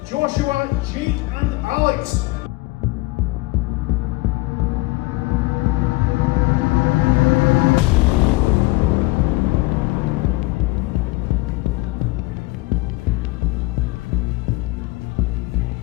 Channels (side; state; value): right; quieter; 21.5 dB